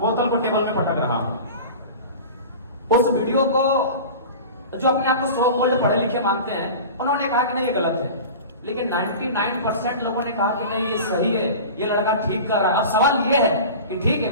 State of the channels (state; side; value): inverted; both; correlation -0.35